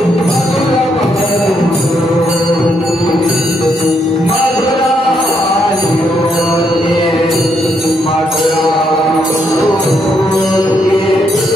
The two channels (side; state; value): both; normal; correlation 0.76